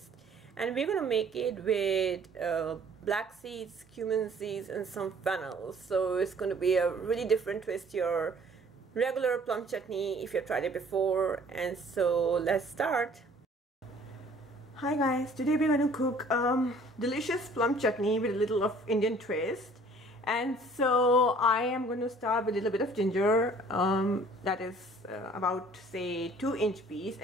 And we're going to make it with black seeds, cumin seeds and some fennel. So it's going to be a really different twist to your regular plum chutney if you've tried it before. And so let's start. Hi guys, today we're going to cook delicious plum chutney with a little of Indian twist. And so I am going to start with a little bit of ginger, that is about say 2-inch piece,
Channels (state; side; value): normal; both; correlation 0.54